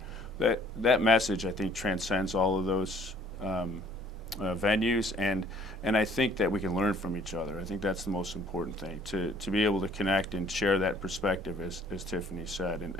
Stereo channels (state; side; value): normal; both; correlation 0.58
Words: that message, I think, transcends all of those venues, and I think that we can learn from each other. I think that's the most important thing, to be able to connect and share that perspective, as Tiffany said,